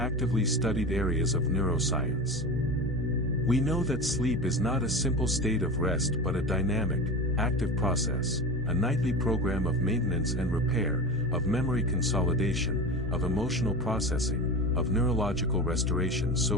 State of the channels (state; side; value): normal; both; correlation 0.27